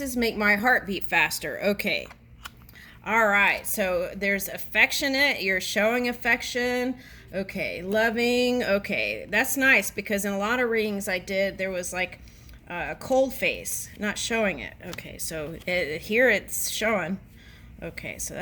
make my heart beat faster. Okay. All right. So there's affectionate. You're showing affection. Okay. Loving. Okay. That's nice because in a lot of readings I did, there was like a cold face, not showing it. Okay. So here it's showing. Okay. So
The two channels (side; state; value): both; identical; correlation 1.00